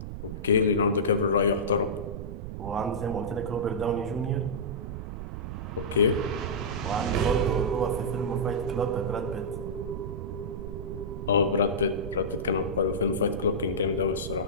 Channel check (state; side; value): noise; right; rumble, 7 dB below the sound